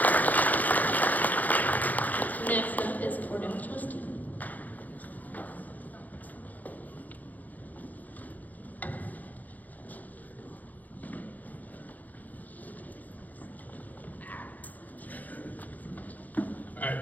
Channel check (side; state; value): right; late; 0.081 ms